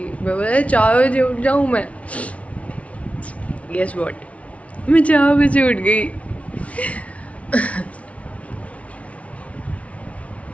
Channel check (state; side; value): late; right; 0.064 ms